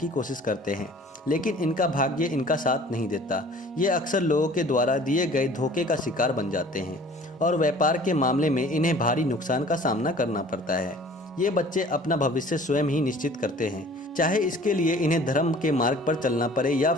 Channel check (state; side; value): normal; both; correlation 0.49